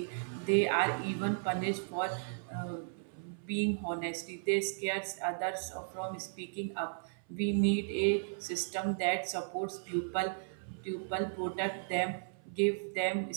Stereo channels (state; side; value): silent; left; 54 dB below the other